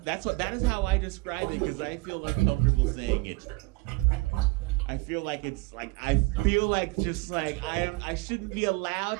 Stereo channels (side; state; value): left; quieter; 23.8 dB